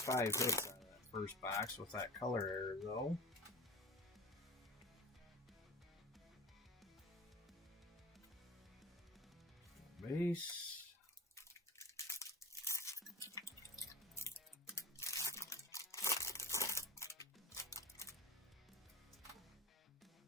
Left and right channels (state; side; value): normal; both; correlation 0.39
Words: hits out of that first box with that color error, though. Base.